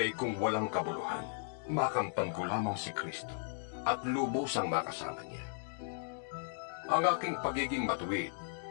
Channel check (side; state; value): right; silent; digital silence